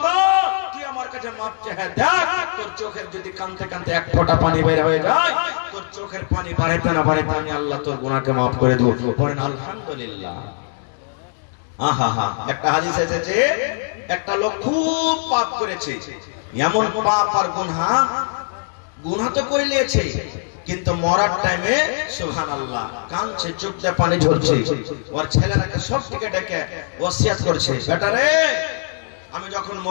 মাপ চাহে দেখ, তোর চোখের যদি কাঁদতে কাঁদতে এক ফোঁটা পানি বের হয়ে যায়, তোর চোখের পানি বাড়াইতে না বাড়াইতে আমি আল্লাহ তোর গুনাহকে মাফ করে দেব। পড়েন আলহামদুলিল্লাহ। আহা হা, একটা হাদিস এসেছে একটা লোক খুব পাপ করেছে, এমন পাপ আর গুনাহ তো করে নিয়েছে, কিন্তু মরার টাইমে সুবহানাল্লাহ কাঁদছে, চোখ দিয়ে পানি ঝরছে। ওর ছেলেরাকে সব দিকে ডেকে ওসিয়াত করছে, বেটা রে আমি যখন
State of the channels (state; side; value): silent; right; 63 dB below the other